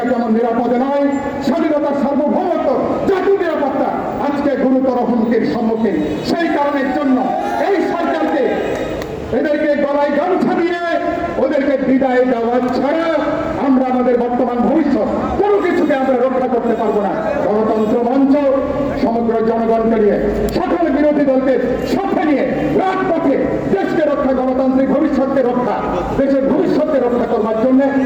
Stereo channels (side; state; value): both; identical; correlation 1.00